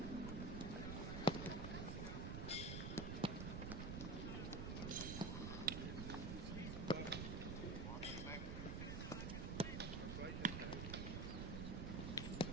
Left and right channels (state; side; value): noise; right; rumble, 2 dB below the sound